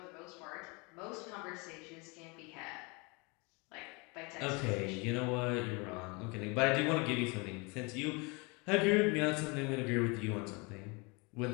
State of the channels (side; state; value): right; quieter; 29.1 dB